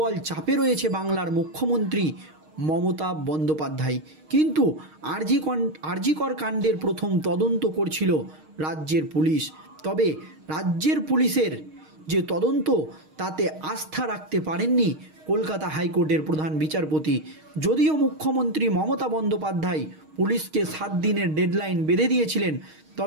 চাপে রয়েছে বাংলার মুখ্যমন্ত্রী মমতা বন্দ্যোপাধ্যায়। কিন্তু আরজিকর কাণ্ডের প্রথম তদন্ত করছিল রাজ্যের পুলিশ। তবে রাজ্যের পুলিশের যে তদন্ত, তাতে আস্থা রাখতে পারেননি কলকাতা হাইকোর্টের প্রধান বিচারপতি। যদিও মুখ্যমন্ত্রী মমতা বন্দ্যোপাধ্যায় পুলিশকে 7 দিনের ডেডলাইন বেঁধে দিয়েছিলেন,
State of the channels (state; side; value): late; left; 6.4 ms